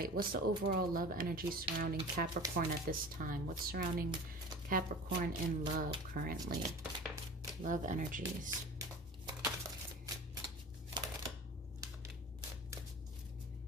what's the overall love energy surrounding Capricorn at this time? What's surrounding Capricorn in love currently? Love energies.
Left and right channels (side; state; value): both; normal; correlation 0.38